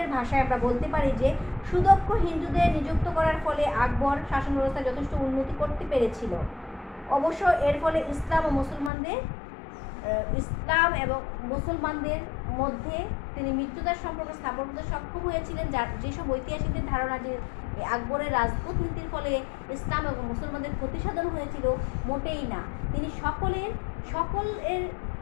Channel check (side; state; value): right; drops out; at 8.9 s